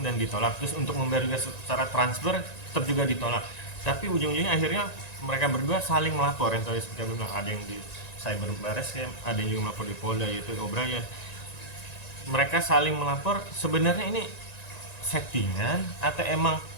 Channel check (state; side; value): late; right; 1.9 ms